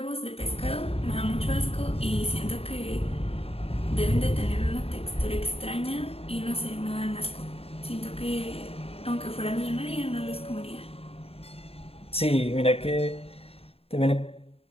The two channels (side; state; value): right; late; 0.28 ms